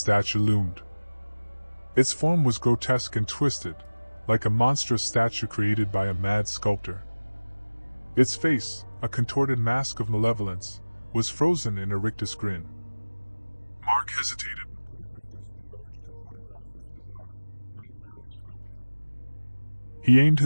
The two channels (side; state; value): both; inverted; correlation -1.00